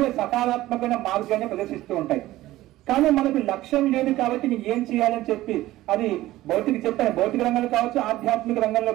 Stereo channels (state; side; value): quieter; left; 16.2 dB